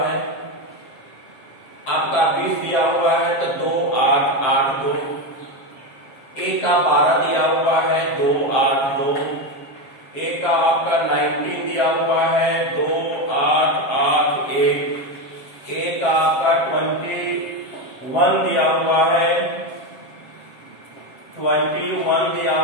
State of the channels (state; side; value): late; right; 7.6 ms